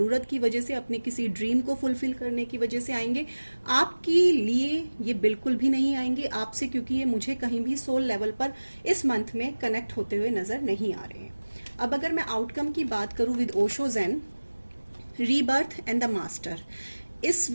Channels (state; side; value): inverted; both; correlation -1.00